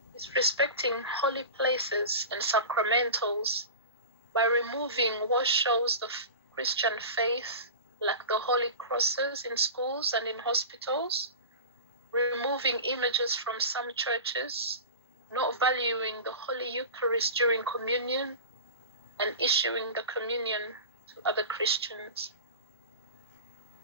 Disrespecting holy places and sacramentals by removing what shows the Christian faith, like the holy crosses in schools and in hospitals, removing images from some churches, not valuing the Holy Eucharist during communion, and issuing the communion to other Christians.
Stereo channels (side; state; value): both; inverted; correlation -0.31